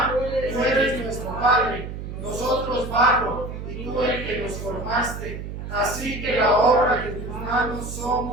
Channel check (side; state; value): right; noise; hum, 8 dB below the sound